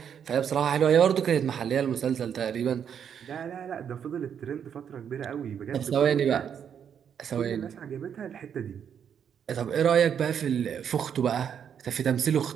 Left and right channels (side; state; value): left; quieter; 8.2 dB